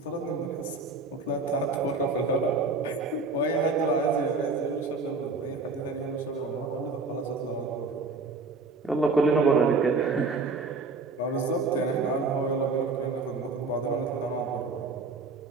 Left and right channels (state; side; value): quieter; left; 3.9 dB